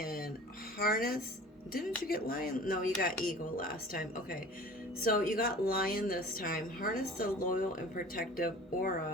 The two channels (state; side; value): normal; both; correlation 0.43